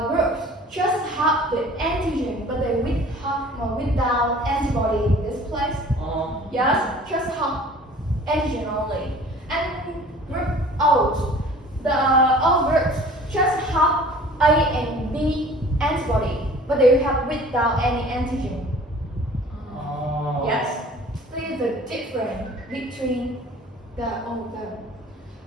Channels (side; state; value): both; normal; correlation 0.48